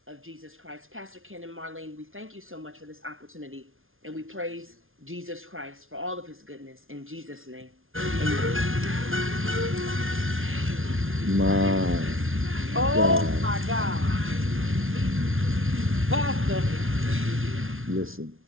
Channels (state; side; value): late; left; 0.60 ms